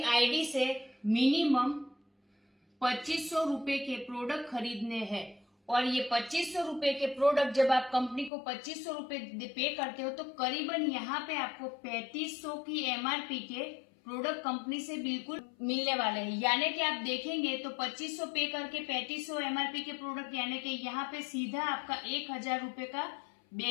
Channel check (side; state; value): right; drops out; at 8.3 s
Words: आईडी से मिनिमम 2500 रुपए के प्रोडक्ट खरीदने हैं और ये 2500 रुपए के प्रोडक्ट जब आप कंपनी को 2500 रुपए पे करते हो तो करीबन यहाँ पे आपको 3500 की एमआरपी के प्रोडक्ट कंपनी से बिल्कुल मिलने वाले हैं। यानी कि आप देखेंगे तो 2500 पे करके 3500 एमआरपी के प्रोडक्ट यानी कि यहाँ पे सीधा आपका 1000 रुपए का